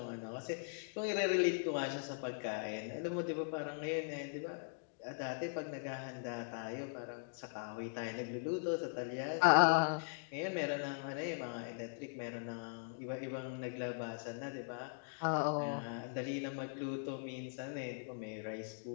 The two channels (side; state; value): right; silent; digital silence